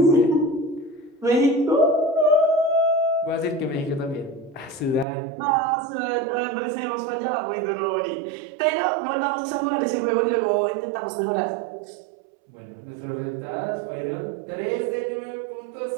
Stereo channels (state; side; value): drops out; left; at 5.1 s